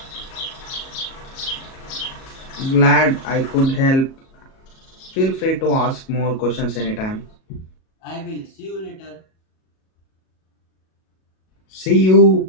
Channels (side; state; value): right; late; 37 ms